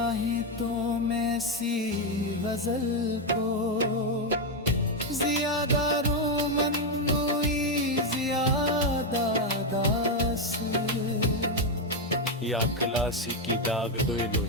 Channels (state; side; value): normal; both; correlation 0.05